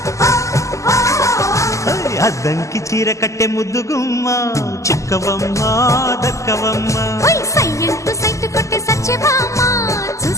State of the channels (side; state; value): right; late; 0.15 ms